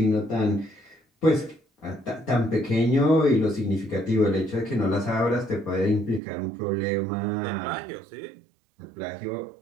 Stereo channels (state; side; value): drops out; left; at 6.2 s